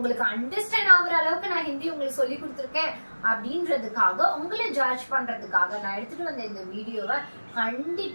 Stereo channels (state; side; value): inverted; both; correlation -1.00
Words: அண்டர்ஸ்டாண்ட் ஆகுற அளவுக்கு நான் ஹிந்தி உங்களுக்கு சொல்லி கொடுத்துருக்கேன் அப்படின்றதுக்காக உங்களை ஜட்ஜ் பண்றதுக்காக நான் எடுத்துட்டு வந்த இந்த வீடியோவை